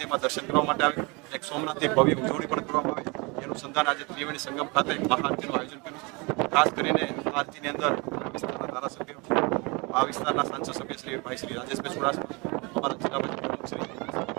દર્શન કરવા માટે આવે, એક સોમનાથની ભવ્ય ઉજવણી પણ કરવામાં આવે એનું સંધાન આજે ત્રિવેણી સંગમ ખાતે મહાઆરતીનું આયોજન કર્યું છે। ખાસ કરીને આરતીની અંદર વિસ્તારના ધારાસભ્યો, આ વિસ્તારના સાંસદ સભ્ય શ્રી ભાઈ શ્રી રાજેશભાઈ ચુડાસમા, અમારા જિલ્લા પંચાયત શ્રી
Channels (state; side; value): quieter; left; 28.3 dB